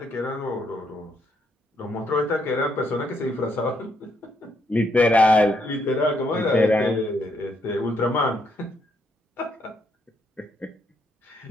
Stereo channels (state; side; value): normal; both; correlation 0.75